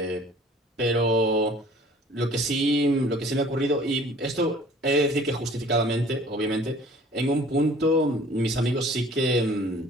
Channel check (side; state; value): both; normal; correlation 0.51